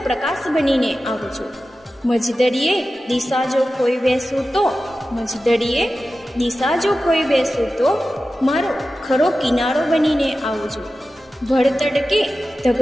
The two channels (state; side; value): normal; both; correlation 0.94